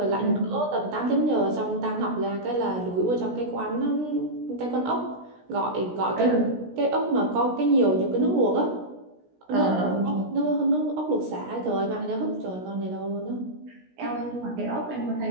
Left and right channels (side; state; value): left; late; 16 ms